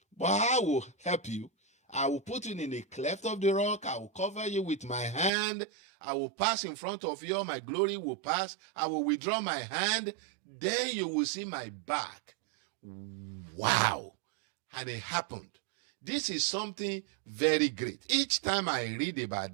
But I will help you. I will put you in a cleft of the rock. I will cover you with my hand. I will pass in front of you. My glory will pass. I will withdraw my hand. Then you will see my back. Wow. And it happened. This is something very great. Each time I read about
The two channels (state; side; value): drops out; left; at 5.3 s